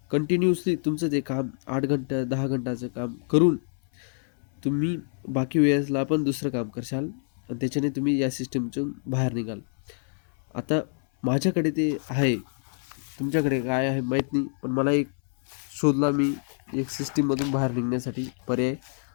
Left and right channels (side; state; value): right; silent; 60 dB below the other